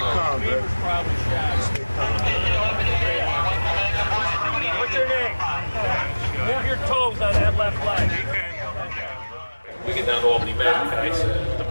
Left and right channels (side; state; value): both; inverted; correlation -1.00